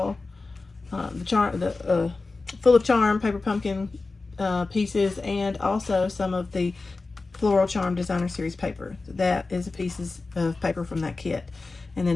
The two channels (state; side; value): quieter; right; 3.7 dB